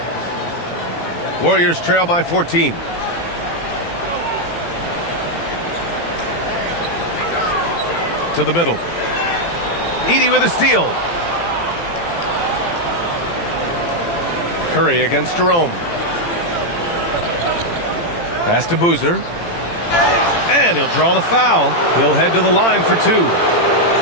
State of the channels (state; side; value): late; right; 18 ms